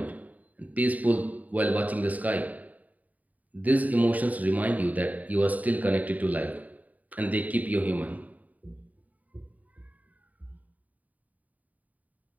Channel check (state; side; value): late; left; 0.075 ms